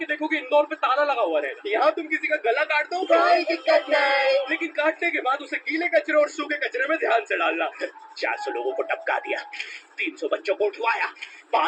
देखोगे इंदौर पे ताला लगा हुआ रहेगा। यहाँ तुम किसी का गला काट दो कोई दिक्कत नहीं, लेकिन काटने के बाद उसे गीले कचरे और सूखे कचरे में ध्यान से डालना। 400 लोगों को टपका दिया, 300 बच्चों को उठवाया,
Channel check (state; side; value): identical; both; correlation 1.00